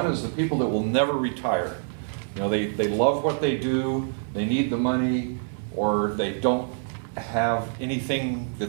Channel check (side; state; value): left; silent; digital silence